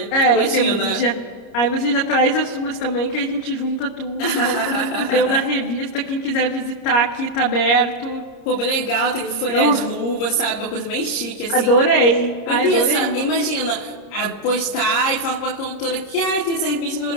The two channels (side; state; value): right; late; 30 ms